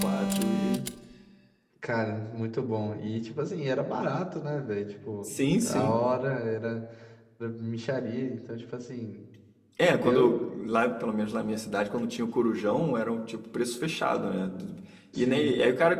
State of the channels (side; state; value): both; identical; correlation 1.00